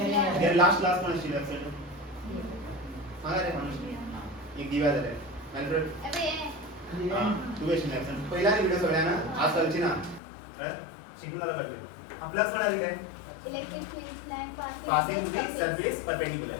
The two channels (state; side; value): drops out; right; at 10.2 s